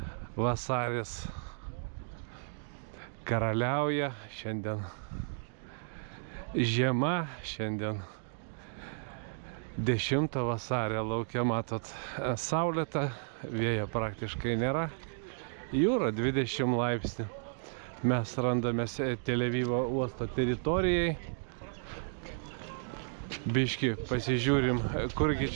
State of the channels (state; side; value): silent; left; digital silence